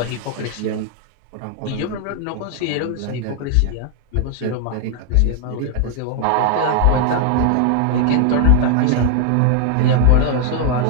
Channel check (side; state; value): both; different; correlation 0.00